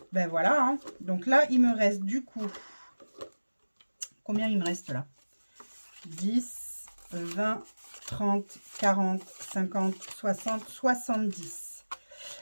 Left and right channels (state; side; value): inverted; both; correlation -1.00